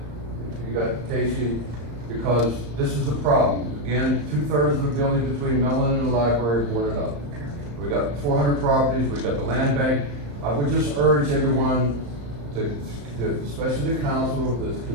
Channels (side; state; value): left; late; 34 ms